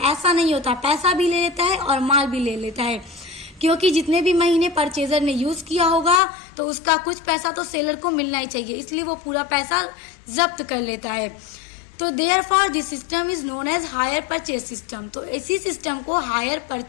नहीं होता। पैसा भी ले लेता है और माल भी ले लेता है, क्योंकि जितने भी महीने परचेजर ने यूज किया होगा तो उसका कुछ पैसा तो सेलर को मिलना ही चाहिए, इसलिए वो पूरा पैसा जब्त कर लेता है। तो therefore this system is known as hire purchase system. तो इसी सिस्टम को हायर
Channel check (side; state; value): right; drops out; at 6.2 s